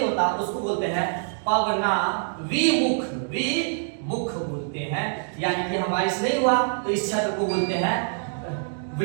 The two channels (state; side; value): silent; left; digital silence